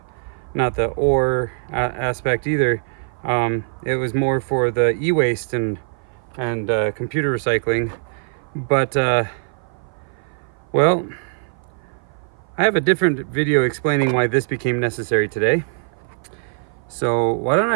ore aspect either. It was more for the e-waste and computer recycling. But well, I have a different video explaining why this became necessary today. So why don't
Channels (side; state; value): left; silent; 55 dB below the other